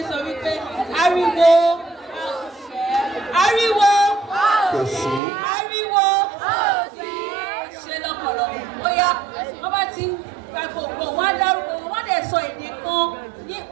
ń sọ wípé ariwo, ariwo, ariwo, ṣe lọ́pọ̀lọpọ̀. Bóyá wọ́n bá ti ń gba gbogbo wọn á dárúkọ wọn, wọ́n dẹ̀ sọ èdè kan,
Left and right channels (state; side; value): drops out; left; at 5.2 s